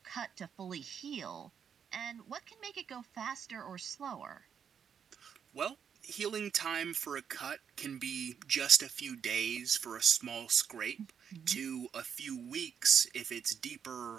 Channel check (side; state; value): left; quieter; 7.6 dB